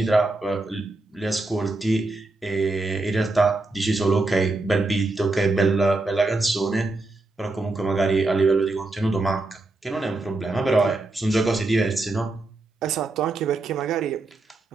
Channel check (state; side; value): quieter; left; 3.1 dB